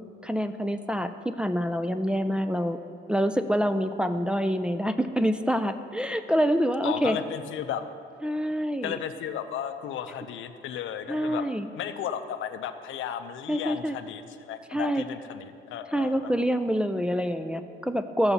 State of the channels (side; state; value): both; normal; correlation 0.83